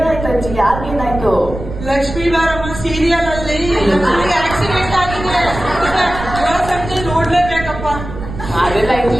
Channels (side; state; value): right; noise; rumble, 9 dB below the sound